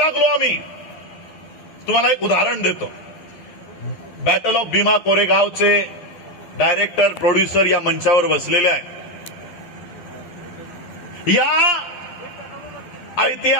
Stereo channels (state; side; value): late; right; 11 ms